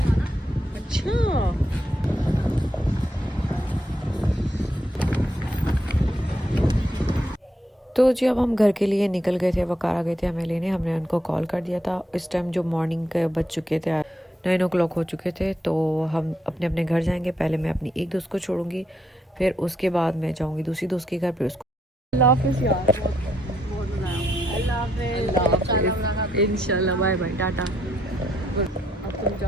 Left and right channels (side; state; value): both; normal; correlation 0.77